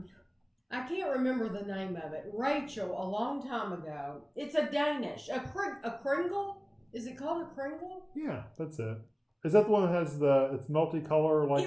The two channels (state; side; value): identical; both; correlation 1.00